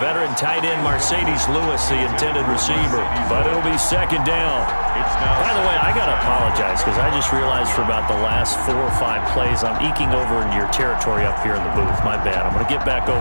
tight end Mercedes Lewis, the intended receiver, but it'll be 2nd down. By the way, I got to apologize because I just realized for about the last 4 or 5 plays I'm eking over into your territory up here in the booth. My bad. I'm going to get back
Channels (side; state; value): both; inverted; correlation -1.00